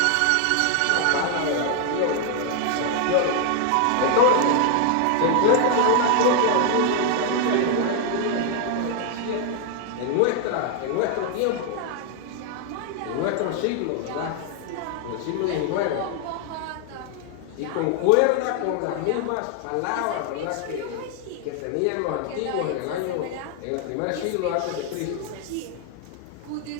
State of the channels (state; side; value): different; both; correlation 0.00